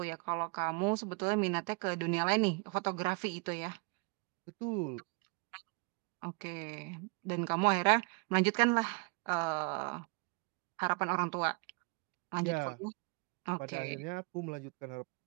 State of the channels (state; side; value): quieter; left; 33.4 dB